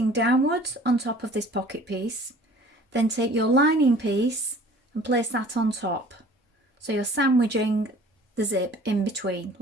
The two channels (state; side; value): normal; both; correlation 0.49